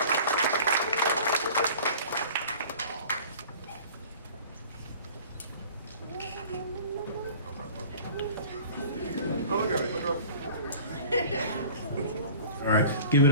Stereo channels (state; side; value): inverted; both; correlation -0.43